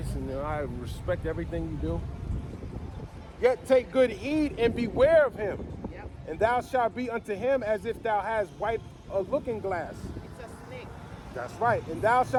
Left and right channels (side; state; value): both; identical; correlation 1.00